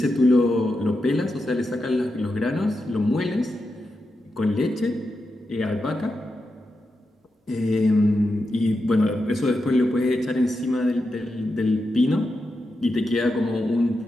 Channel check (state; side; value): normal; both; correlation 0.88